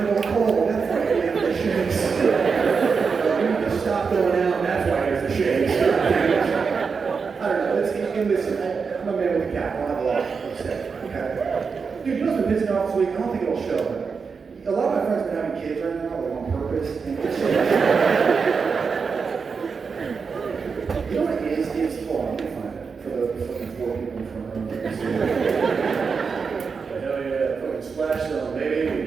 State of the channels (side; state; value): left; quieter; 5.4 dB